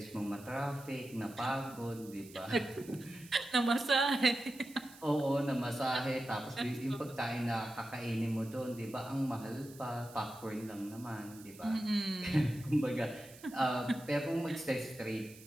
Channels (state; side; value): noise; right; hiss, 20 dB below the sound